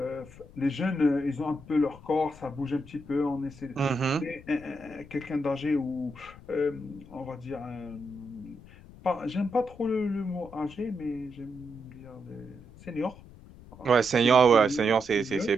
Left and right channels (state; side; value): noise; left; rumble, 20 dB below the sound